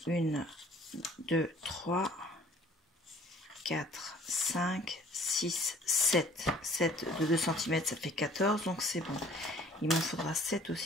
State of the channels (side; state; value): both; normal; correlation 0.54